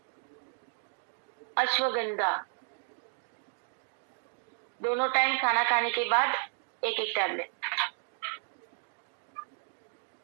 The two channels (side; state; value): left; silent; 56 dB below the other